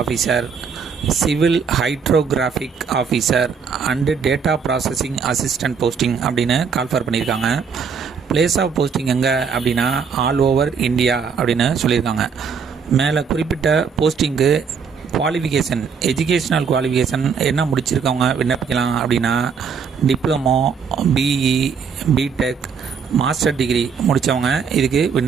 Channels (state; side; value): quieter; left; 6.1 dB